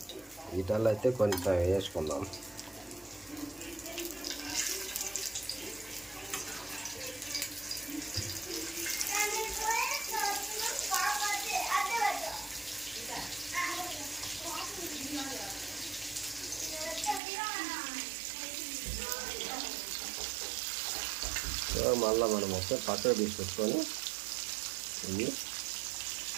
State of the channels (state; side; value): drops out; left; at 17.2 s